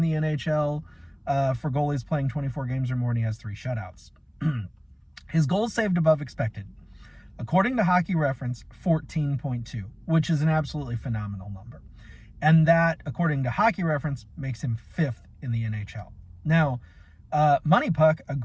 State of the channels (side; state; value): both; identical; correlation 1.00